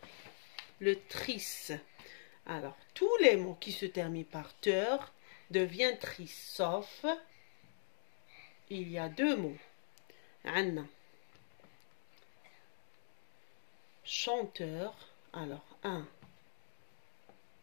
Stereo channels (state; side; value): silent; right; digital silence